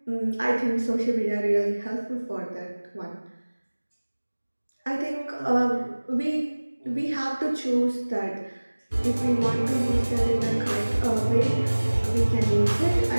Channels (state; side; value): inverted; both; correlation -1.00